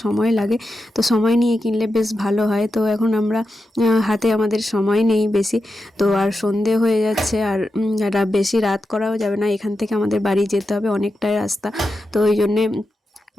সময় লাগে, তো সময় নিয়ে কিনলে বেশ ভালো হয়। তো এখন আমরা হাতে আমাদের সময় নেই বেশি, তো আর সন্ধে হয়ে যাচ্ছে, আর বেশি রাত করাও যাবে না, এখান থেকে আমাদের বাড়ি যেতে হবে অনেকটাই রাস্তা, তো ওই জন্যে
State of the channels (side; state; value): both; normal; correlation 0.89